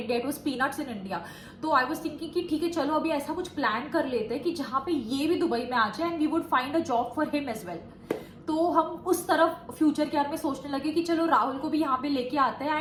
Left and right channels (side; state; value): both; identical; correlation 1.00